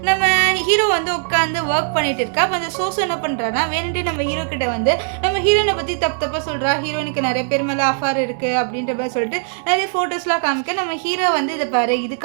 நம்ம ஹீரோ வந்து உட்காந்து ஒர்க் பண்ணிட்டு இருக்கா. அப்போ அந்த சோசோ என்ன பண்ணுறான்னா வேணுட்டு நம்ம ஹீரோ கிட்ட வந்து நம்ம ஹீரோயினை பற்றி தப்பாக சொல்கிறா, ஹீரோயினுக்கு நிறைய பேர் மேலே அஃபார் இருக்குது அப்படின்ற மாதிரி சொல்லிட்டு நிறைய ஃபோட்டோஸ்லாம் காமிக்க, நம்ம ஹீரோ வந்து இதை பாரு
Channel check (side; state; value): left; silent; 66 dB below the other